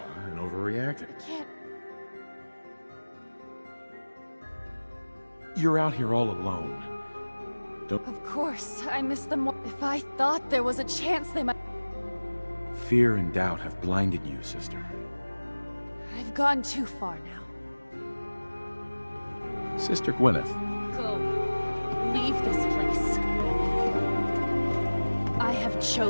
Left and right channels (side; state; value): both; inverted; correlation -1.00